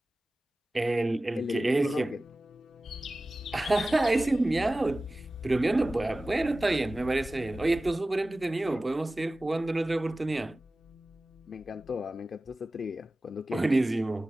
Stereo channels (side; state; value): both; normal; correlation 0.96